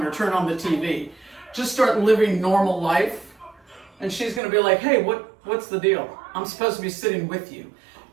or turn on the TV. Just start living normal life, and she's going to be like, hey, what's the deal? I'm supposed to be sitting with you.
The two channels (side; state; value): left; drops out; at 4.4 s